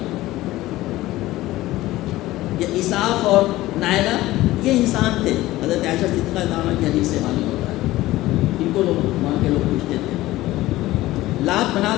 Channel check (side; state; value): right; quieter; 16.9 dB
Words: یہ اساف اور نائلہ یہ انسان تھے، حضرت عائشہ صدیقہ رضی اللہ عنہا کی حدیث سے معلوم ہوتا ہے، ان کو لوگ وہاں کے لوگ پوچھتے تھے۔ لات،